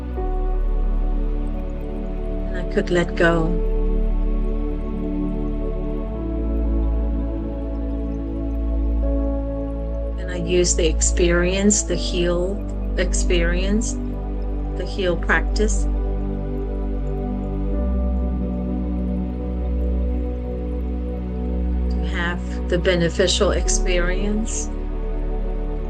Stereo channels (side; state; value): both; identical; correlation 1.00